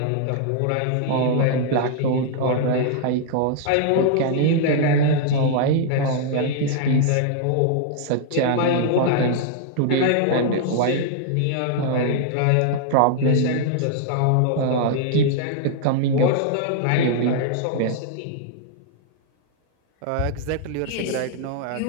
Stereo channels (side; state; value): both; different; correlation -0.01